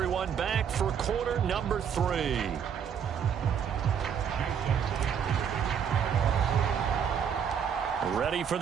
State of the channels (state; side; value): quieter; left; 7.8 dB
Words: back for quarter number 3. Ready for